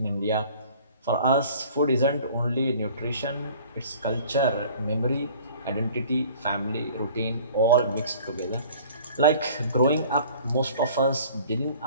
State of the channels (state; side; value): inverted; both; correlation -0.49